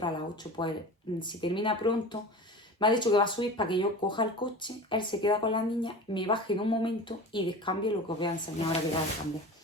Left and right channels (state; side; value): normal; both; correlation 0.34